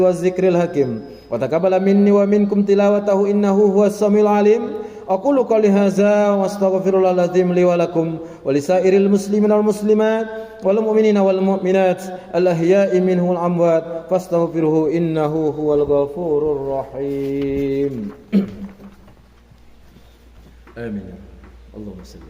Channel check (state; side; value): identical; both; correlation 1.00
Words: zikril hakim, wa taqabbala minni wa minkum tilawatahu innahu huwas samiul alim. Aqulu qouli hadza wa astaghfirullahal azim li wa lakum wa lisairil muslimina wal muslimat wal mu'minina wal mu'minat al ahya'i minhum wal amwat fastaghfiruhu innahu huwal ghafurur rahim. Amin. Allahumma